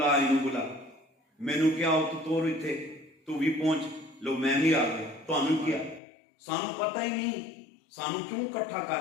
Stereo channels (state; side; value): drops out; right; at 6.0 s